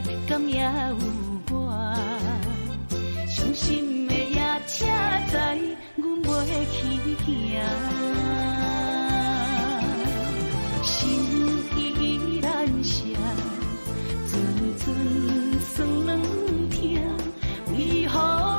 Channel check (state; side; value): inverted; both; correlation -1.00